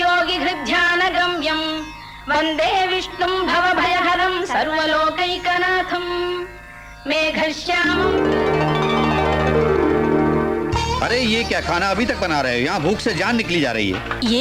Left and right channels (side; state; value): both; identical; correlation 1.00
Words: वन्दे विष्णुं भवभयहरं सर्वलोकैकनाथं मेघश्यामम्। अरे ये क्या खाना अभी तक बना रहे हो? यहाँ भूख से जान निकली जा रही है।